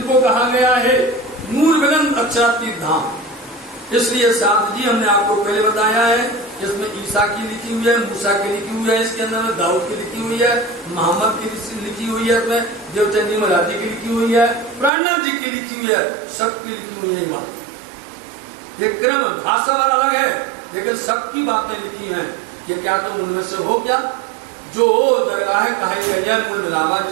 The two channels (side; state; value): left; drops out; at 14.9 s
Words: कहा गया है नूर बुलंद अक्षरातीत धाम। इसलिए साहब जी हमने आपको पहले बताया है, इसमें ईसा की लिखी हुई है, मूसा की लिखी हुई है, इसके अंदर में दाऊद की लिखी हुई है, मोहम्मद की लिखी हुई है, इसमें देवचंदी महाराज जी की लिखी हुई है, प्राणनाथ जी की लिखी हुई है, सबकी लिखी हुई है। बात ये क्रम भाषा वाला अलग है, लेकिन सबकी बातें लिखी हैं। ये क्या तुम उनमें से हो क्या? जो दरगाह कही गई है कुल मिलावा